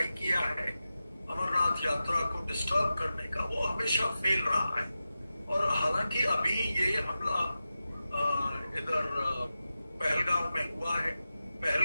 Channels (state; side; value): inverted; both; correlation -0.93